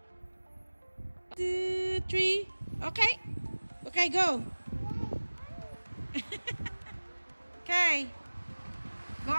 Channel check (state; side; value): inverted; both; correlation -1.00